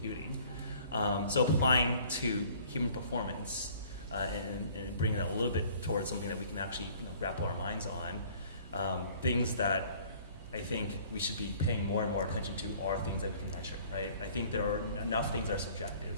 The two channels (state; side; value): inverted; both; correlation -0.53